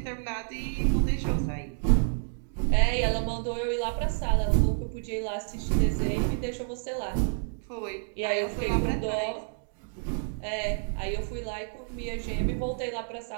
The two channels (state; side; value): silent; left; digital silence